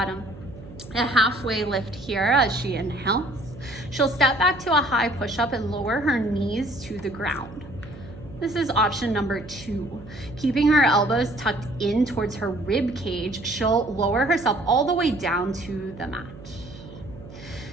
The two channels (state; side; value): noise; right; hum, 17 dB below the sound